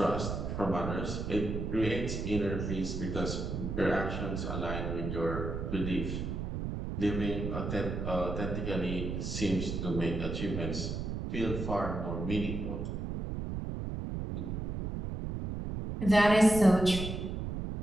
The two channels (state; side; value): noise; right; rumble, 4 dB below the sound